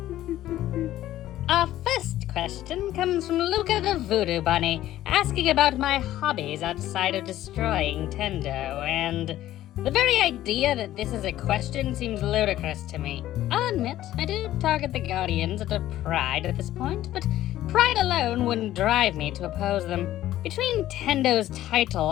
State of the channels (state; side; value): quieter; right; 13.8 dB